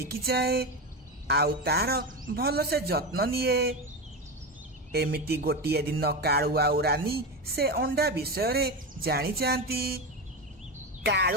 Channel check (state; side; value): normal; both; correlation 0.18